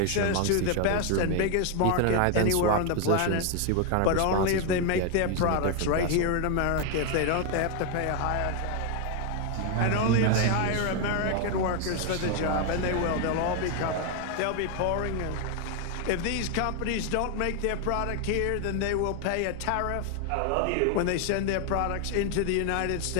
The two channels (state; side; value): different; both; correlation 0.01